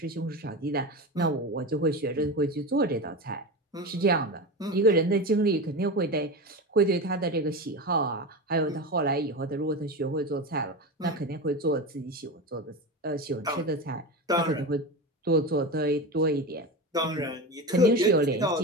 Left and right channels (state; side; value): normal; both; correlation 0.23